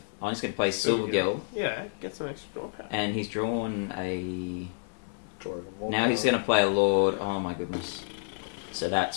play Silvergill. Yeah, get some extra draw power. And he's drawn a... Now he's going to play a Lord. Oh my goodness. So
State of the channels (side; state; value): right; silent; 58 dB below the other